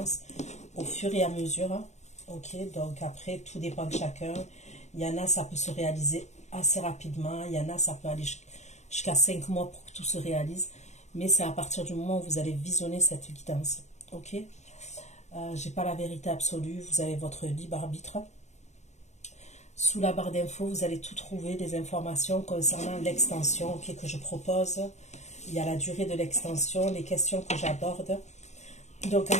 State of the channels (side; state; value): right; late; 0.33 ms